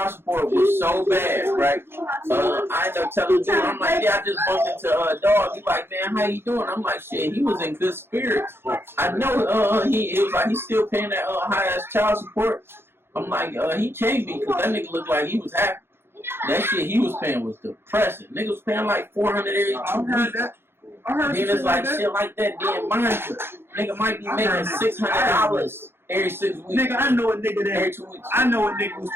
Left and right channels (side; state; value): left; late; 0.11 ms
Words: support was so bad, right? I ended up telling dude, I'm like, yeah, I just bumped into a dog. He like, man, how you doing? I'm like, shit, he was in good spirits. I know it was like he's still paying that high ass child support. I'm like, he can't be because that nigga looked like he was happy. That shit he was paying was depressing. Nigga was paying like $400 every 2 weeks. Then it's like shit like that. Then mind you, nigga might be making $600 every 6 weeks. Nigga, I know a nigga Every that 2 weeks. I know a nigga was